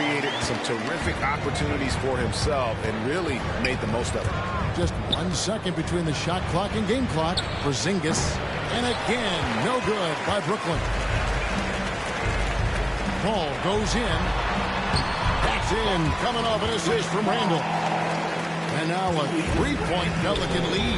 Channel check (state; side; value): identical; both; correlation 1.00